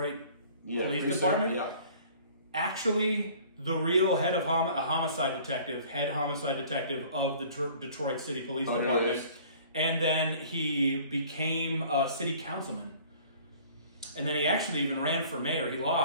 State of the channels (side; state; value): both; inverted; correlation -0.51